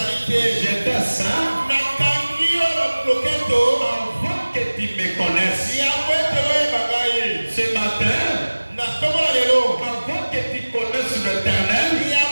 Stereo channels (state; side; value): inverted; both; correlation -1.00